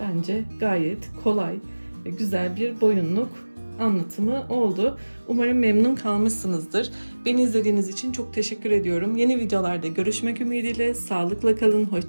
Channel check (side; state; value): both; inverted; correlation -1.00